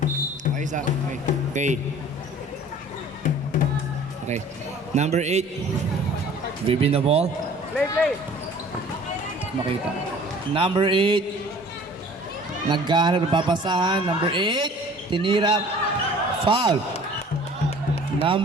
Okay, isa. Okay. Okay. Okay. Number 8. Bibin the ball. Play. Makita. Number 8. Naghahanap ng papasahan. Number 8. Tinira. Foul.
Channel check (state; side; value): normal; both; correlation 0.49